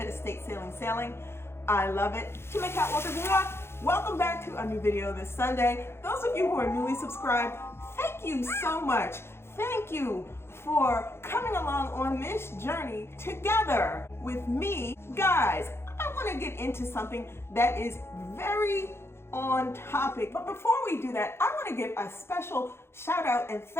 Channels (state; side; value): late; right; 0.12 ms